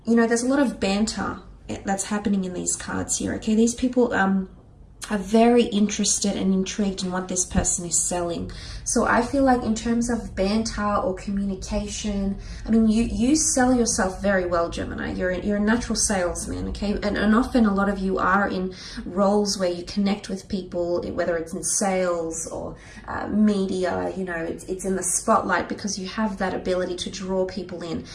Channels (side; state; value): both; identical; correlation 1.00